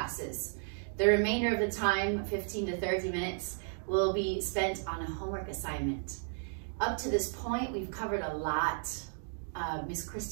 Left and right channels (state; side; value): silent; left; 55 dB below the other